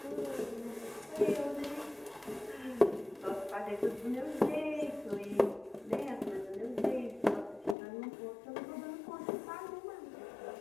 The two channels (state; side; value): drops out; right; at 7.8 s